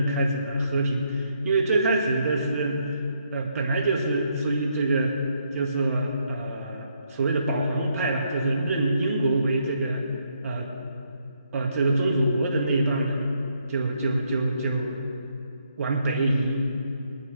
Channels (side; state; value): both; inverted; correlation -0.75